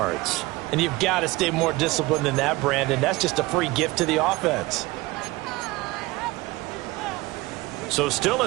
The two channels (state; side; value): quieter; left; 21.0 dB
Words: And you've got to stay more disciplined than that, Brandon. That's just a free gift to the offense. So still a